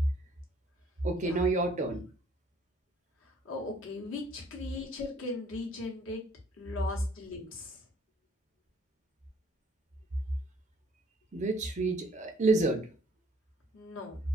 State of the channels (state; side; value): normal; both; correlation 0.61